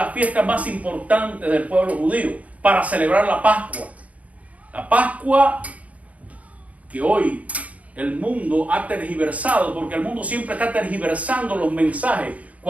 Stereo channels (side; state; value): left; late; 0.068 ms